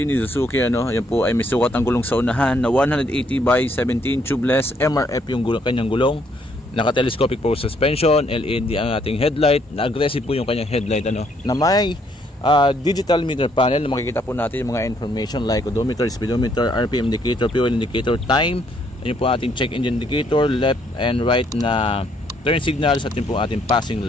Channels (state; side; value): normal; both; correlation 0.69